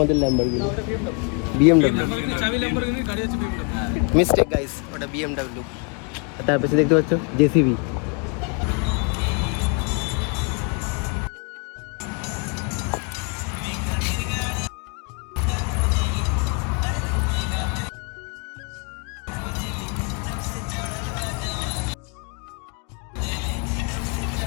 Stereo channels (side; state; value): right; quieter; 35.1 dB